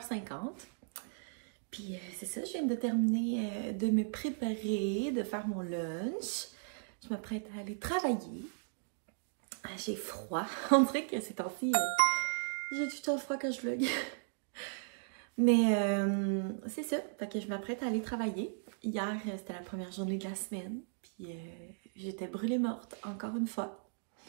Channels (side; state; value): left; silent; digital silence